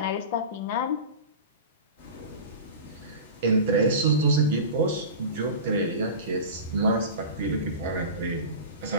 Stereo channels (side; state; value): both; inverted; correlation -0.31